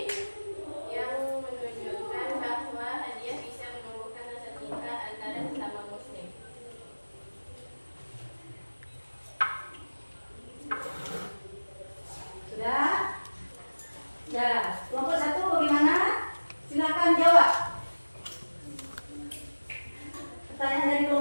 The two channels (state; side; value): inverted; both; correlation -1.00